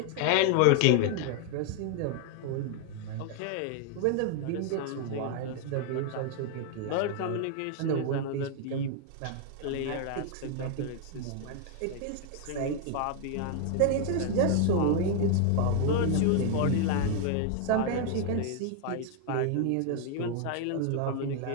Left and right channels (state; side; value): different; both; correlation 0.00